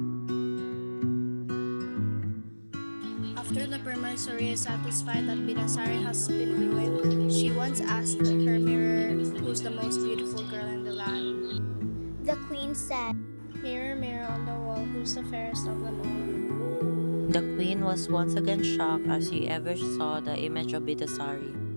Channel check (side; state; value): both; inverted; correlation -1.00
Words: After the Permaisuri is satisfied that Bidasari has been ruined, she once asked her mirror who's the most beautiful girl in the land. The queen said, Mirror, mirror on the wall, who's the fairest of them all? The queen was once again shocked as she ever saw the image of Bidasari.